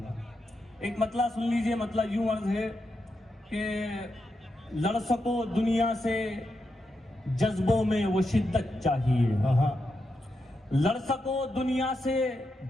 एक मतला सुन लीजिए, मतला यूं अर्ज है कि लड़ सको दुनिया से जज्बों में वो शिद्दत चाहिए, लड़ सको दुनिया से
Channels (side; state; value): both; normal; correlation 0.85